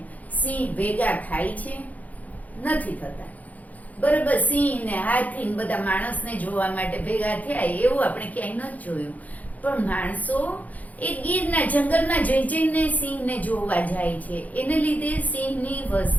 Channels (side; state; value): right; late; 0.077 ms